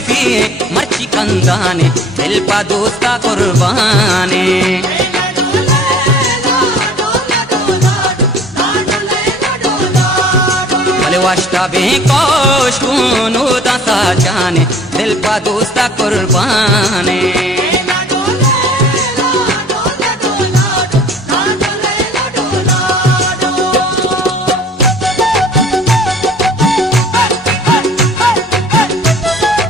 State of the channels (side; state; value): both; normal; correlation 0.50